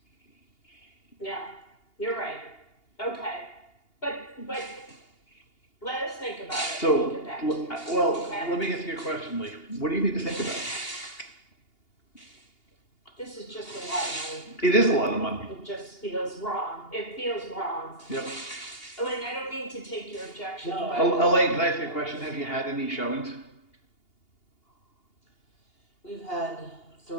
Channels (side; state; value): right; late; 2.8 ms